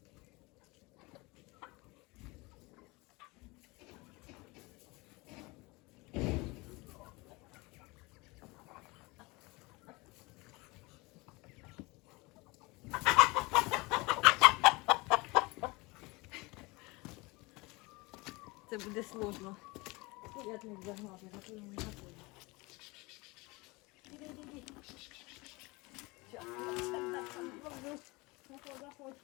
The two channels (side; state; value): right; quieter; 24.5 dB